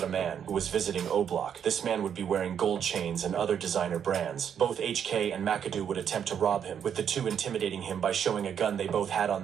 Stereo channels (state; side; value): quieter; left; 8.3 dB